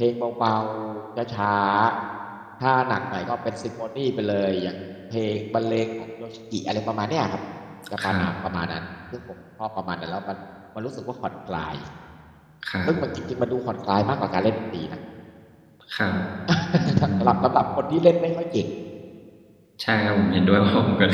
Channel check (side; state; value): both; identical; correlation 1.00